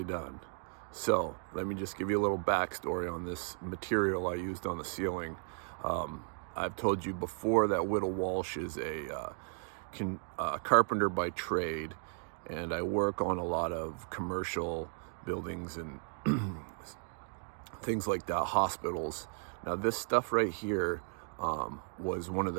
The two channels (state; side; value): silent; left; 54 dB below the other